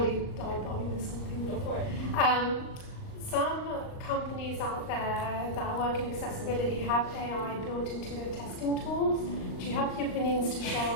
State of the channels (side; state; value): right; late; 38 ms